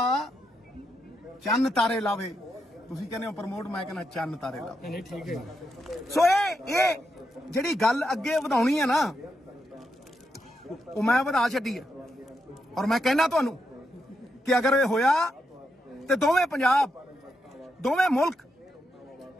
ਚੰਨ ਤਾਰੇ ਲਾਵੇ? ਤੁਸੀਂ ਕਹਿੰਦੇ ਹੋ ਪ੍ਰਮੋਟ, ਮੈਂ ਕਹਿੰਦਾ ਚੰਨ ਤਾਰੇ ਲਾਵੇ। ਨਹੀਂ ਠੀਕ ਹੈ। ਸੋ ਇਹ ਜਿਹੜੀ ਗੱਲ ਅੱਗੇ ਵਧਾਉਣੀ ਹੈ ਨਾ, ਉਹ ਮੈਂ ਵਧਾ ਛੱਡੀ ਹੈ। ਔਰ ਮੈਂ ਕਹਿਣਾ ਤੁਹਾਨੂੰ कि अगर ये होया तो दोवें पंजाब दोवें मुल्क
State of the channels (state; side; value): normal; both; correlation 0.83